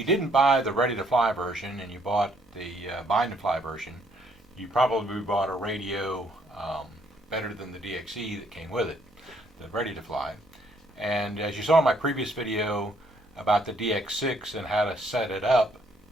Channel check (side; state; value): both; normal; correlation 0.67